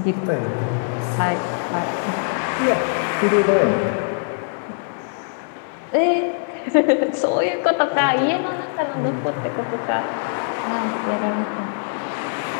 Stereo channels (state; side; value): silent; right; digital silence